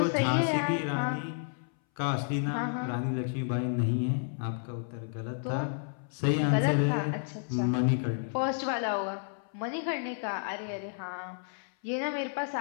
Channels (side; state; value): right; silent; 57 dB below the other